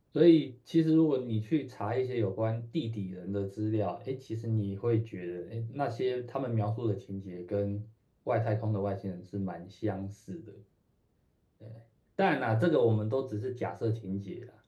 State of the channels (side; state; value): both; identical; correlation 1.00